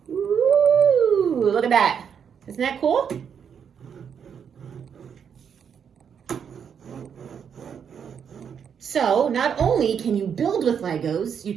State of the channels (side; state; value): left; quieter; 7.5 dB